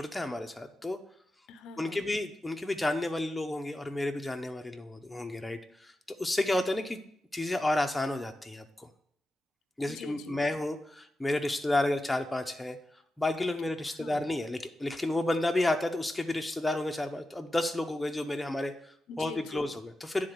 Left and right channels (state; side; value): normal; both; correlation 0.91